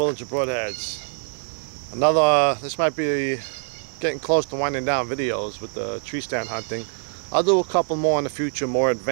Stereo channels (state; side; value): silent; left; digital silence